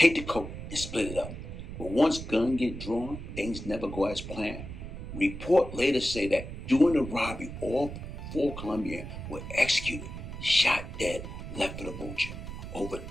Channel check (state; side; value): noise; right; rumble, 9 dB below the sound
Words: the coke, and split it up. But once guns get drawn, things never go as planned. Report later say that during the robbery, all 4 Colombians were executed, shot dead, left for the vulture. Over